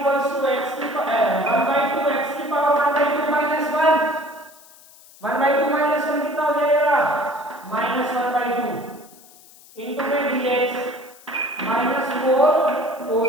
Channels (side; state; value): left; noise; hiss, 24 dB below the sound